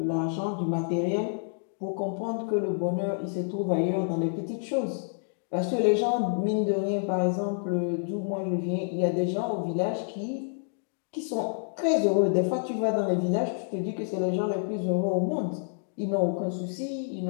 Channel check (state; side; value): silent; right; digital silence